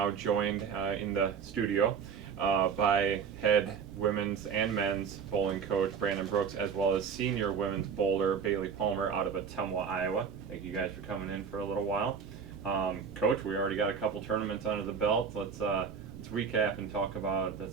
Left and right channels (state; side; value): quieter; left; 6.5 dB